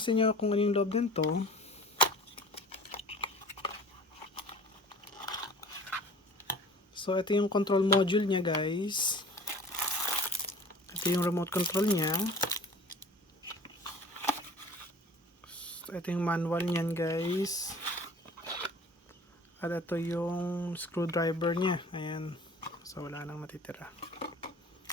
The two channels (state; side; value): normal; both; correlation 0.44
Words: sa inyo kung ano yung loob nito. So ito yung control module niya guys. Ito yung remote control niya. So, ito yung manual niyan guys. At ito yung screwdriver niya. Ayan. So wala nang matitira.